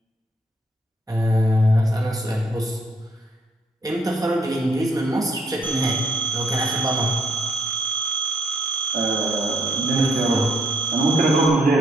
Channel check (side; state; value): both; normal; correlation 0.71